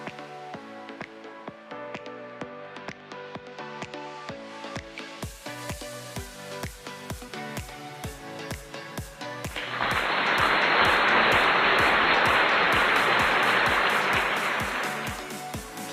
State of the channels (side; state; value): both; identical; correlation 1.00